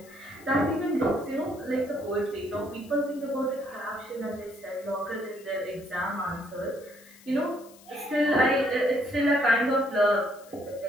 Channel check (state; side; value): noise; left; hiss, 24 dB below the sound